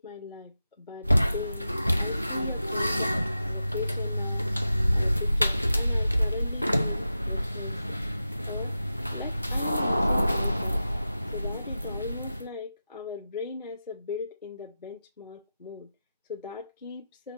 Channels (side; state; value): both; inverted; correlation -0.91